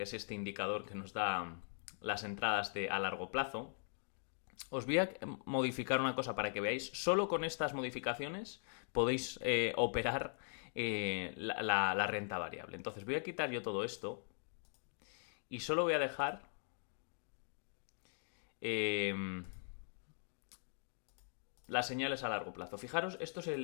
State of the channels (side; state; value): right; silent; digital silence